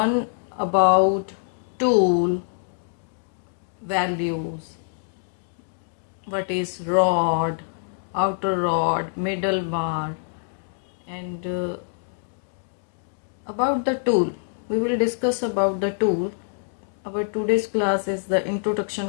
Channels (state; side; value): silent; right; digital silence